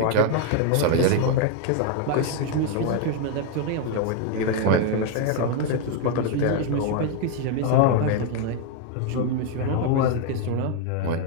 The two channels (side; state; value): both; different; correlation 0.01